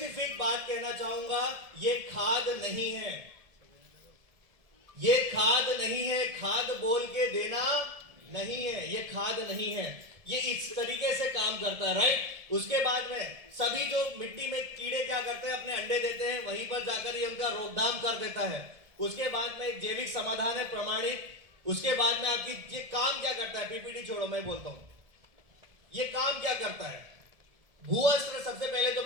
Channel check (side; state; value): left; late; 1.7 ms